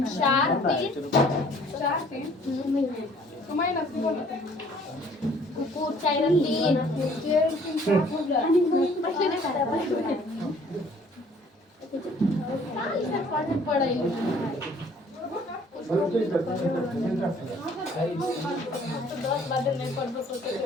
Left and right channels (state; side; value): normal; both; correlation 0.57